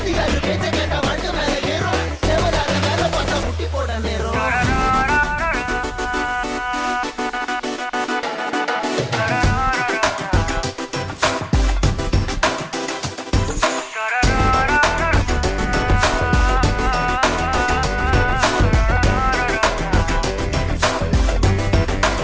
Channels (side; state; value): both; identical; correlation 1.00